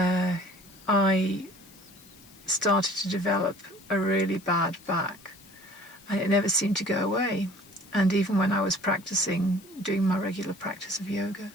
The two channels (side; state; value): left; noise; hiss, 23 dB below the sound